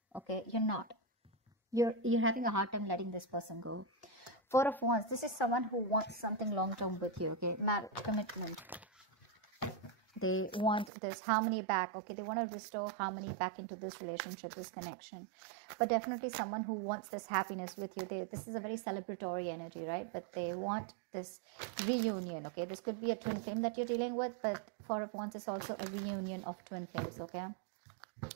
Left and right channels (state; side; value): drops out; left; at 10.9 s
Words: okay? You're not. You're having a hard time letting this person go. Four of Wands. This is someone who wants something long-term with you, okay? Marriage, commitment. They want this harmony back, okay? They want to restore harmony back into this relationship, this connection. But definitely someone who wants this happiness with you. This is a very celebratory energy, right? But they want this reunion, okay? This could be a twin flame that you're dealing with, but Four of Wands is also a reunion of twin flames, okay?